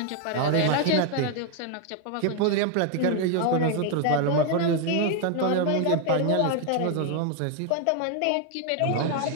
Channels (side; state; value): both; different; correlation 0.01